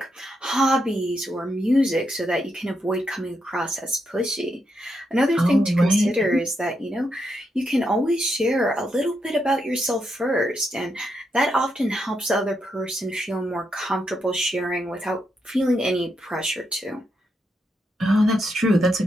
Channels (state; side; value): normal; both; correlation 0.82